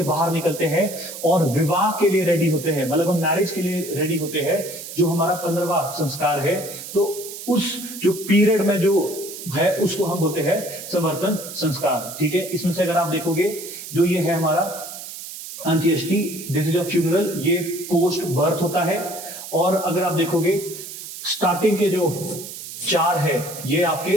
बाहर निकलते हैं और विवाह के लिए रेडी होते हैं, मतलब हम मैरिज के लिए रेडी होते हैं, जो हमारा 15वां संस्कार है, तो उस जो पीरियड में जो है उसको हम बोलते हैं संवर्तन संस्कार, ठीक है। इसमें से अगर आप देखोगे जो ये है हमारा अंत्येष्टि, दिस इज अ फ्यूनरल, ये पोस्ट बर्थ होता है। और अगर आप देखोगे स्टार्टिंग के जो 4 है ये आपके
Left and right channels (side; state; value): right; noise; hiss, 11 dB below the sound